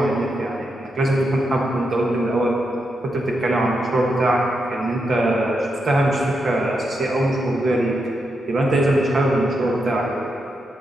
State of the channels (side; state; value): both; normal; correlation 0.84